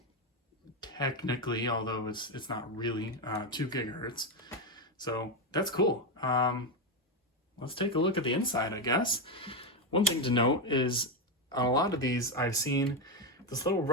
technically, although it's not really 2 gigahertz. So that's cool. Let's take a look at the inside, I guess. One thing to note is on a lot of these I've seen this little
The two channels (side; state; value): both; normal; correlation 0.08